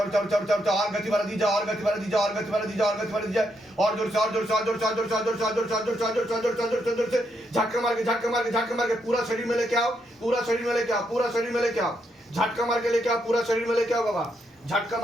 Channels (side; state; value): both; normal; correlation 0.78